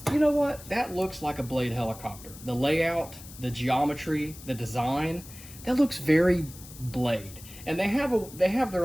you know what, that looks like a Blade helicopter. The layout, the geometry, the design, that looks very Blade. And they have their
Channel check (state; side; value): noise; left; hiss, 17 dB below the sound